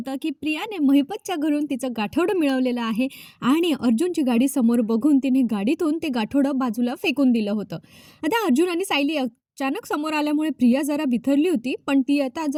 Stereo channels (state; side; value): identical; both; correlation 1.00